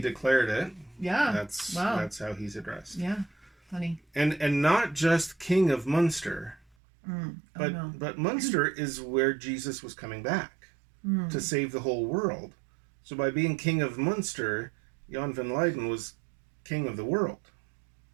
it, Yeah. that's Wow. that's how he's addressed. Yeah. Funny. And not just king of Munster, Oh, no. but Munster is where Jesus was coming back to save the whole world. So by being king of Munster, Jan van Leyden was king of the world.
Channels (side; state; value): left; drops out; at 6.7 s